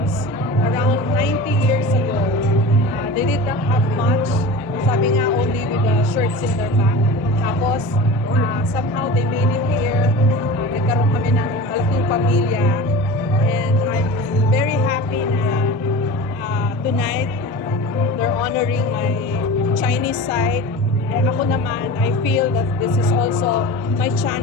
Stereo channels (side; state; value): both; normal; correlation 0.34